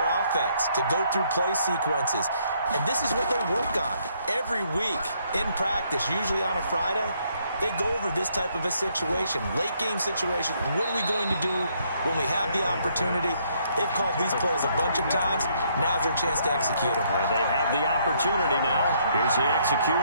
offense, to go through play sequences. And this is what they work on every week in practice, usually on a Friday. They go over this type of a situation, late game situation. What are we going to do when we have the opportunity? They've called these plays a bunch of times. Now's their chance to execute them. They have the opportunity now. Here's the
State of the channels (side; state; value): both; inverted; correlation -0.70